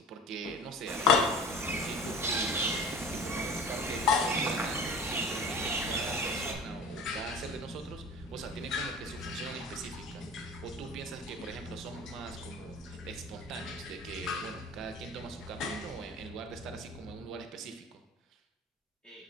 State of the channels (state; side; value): normal; both; correlation 0.39